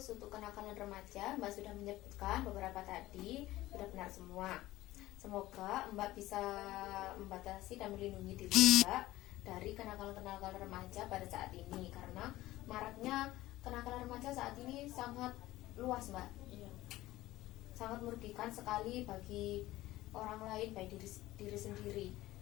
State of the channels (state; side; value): quieter; right; 16.7 dB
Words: untuk kenakalan remaja Mbak sudah menyebutkan beberapa tadi, sudah benar semua. Semoga Mbak bisa membatasi dan melindungi diri Mbak dari kenakalan remaja pada saat ini, karena maraknya kenakalan remaja saat ini sangat luas Mbak. Sangat merugikan sekali bagi orang lain, baik diri sendiri.